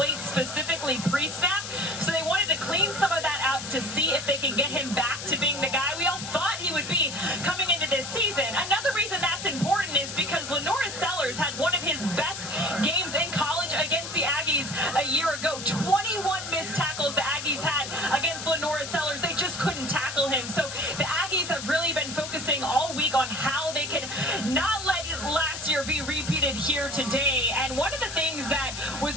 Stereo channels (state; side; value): noise; left; hiss, 8 dB below the sound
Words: specifically pre-snap, so they wanted to clean some of that out to see if they can get him back to being the guy we all thought he would be coming into this season. Another reason that's important is because Lenora Sellers had one of his best games in college against the Aggies a year ago. 21 missed tackles the Aggies had against Lenora Sellers. They just couldn't tackle him. So the Aggies have really been focusing all week on how they can not let last year be repeated here today. And one of the things that was